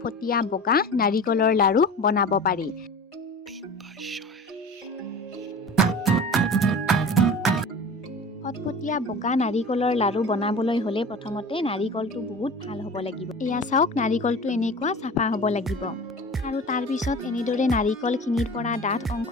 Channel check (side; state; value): both; normal; correlation 0.37